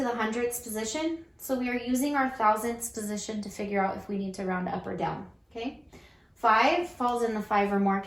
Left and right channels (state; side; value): identical; both; correlation 1.00